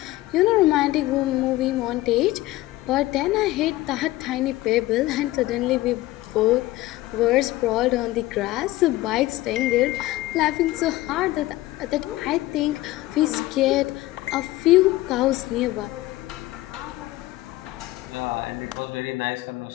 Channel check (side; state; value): right; quieter; 17.6 dB